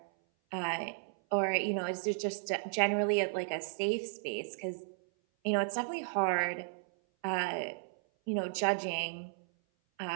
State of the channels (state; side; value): silent; left; 55 dB below the other